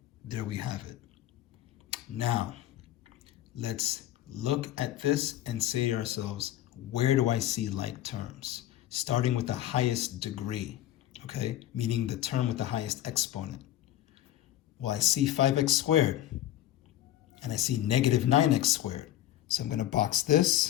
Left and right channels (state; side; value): quieter; right; 13.0 dB